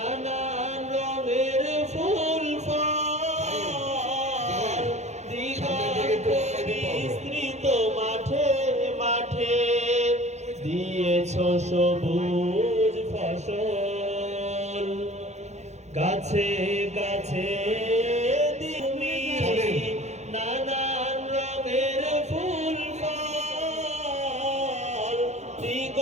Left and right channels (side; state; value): left; late; 0.33 ms